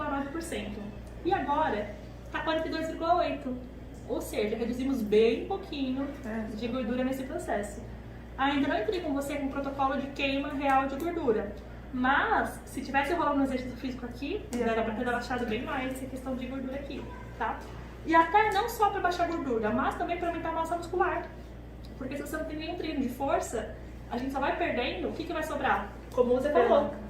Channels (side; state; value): both; identical; correlation 1.00